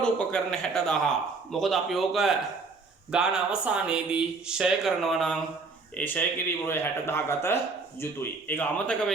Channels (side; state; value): left; quieter; 4.2 dB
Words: උපකරණ 60,000. මොකද අපි ඕක ගාන අවසානයේදී ෂය කරනවා නම් ඒ ෂය කිරීම වල 60,000 ගත යුතුයි. ඒක අමතක